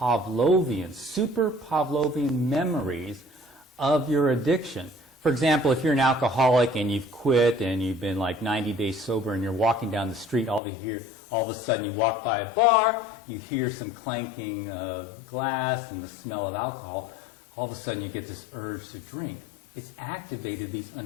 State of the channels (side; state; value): right; drops out; at 10.6 s